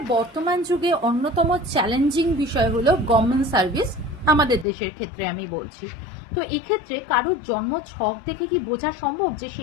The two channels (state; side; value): drops out; right; at 4.7 s